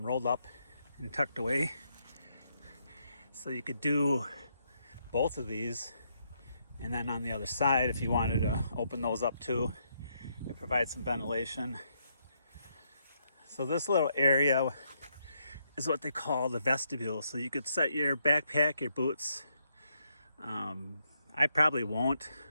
up and tucked away. So you could do both of these, and then on the other side, if you wanted to open those up too, it provides some ventilation. So this little area is what they call the vestibule. So you could set your backpack, your boots. I probably won't.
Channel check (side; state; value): both; inverted; correlation -0.77